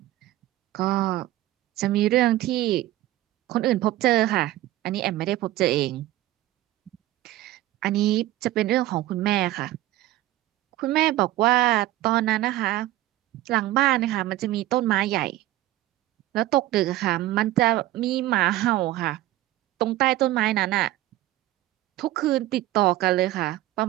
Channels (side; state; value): left; quieter; 15.8 dB